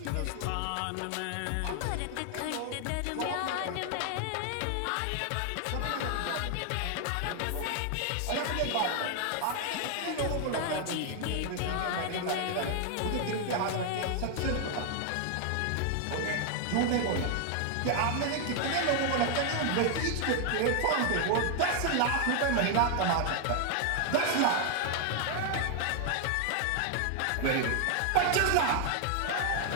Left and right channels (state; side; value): different; both; correlation 0.00